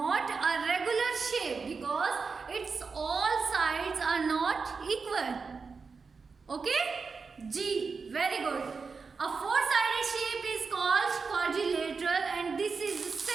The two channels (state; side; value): quieter; left; 4.9 dB